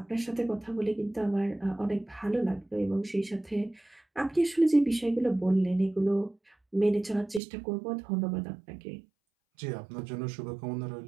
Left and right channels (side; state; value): left; drops out; at 7.4 s